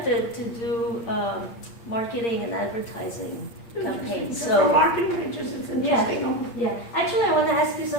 to do marketing and advertising campaigns. For So marketing pictures, it's interesting. yeah, actually I want to ask you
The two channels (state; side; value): late; right; 8.6 ms